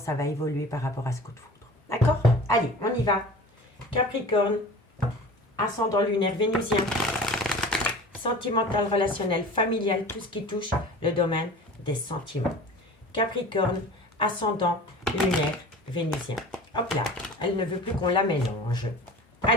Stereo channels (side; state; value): both; normal; correlation 0.39